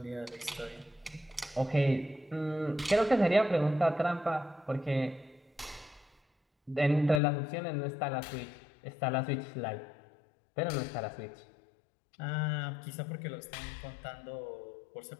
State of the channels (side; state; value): right; drops out; at 7.2 s